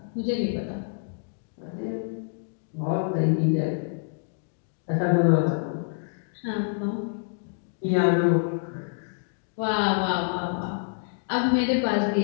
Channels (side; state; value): right; silent; digital silence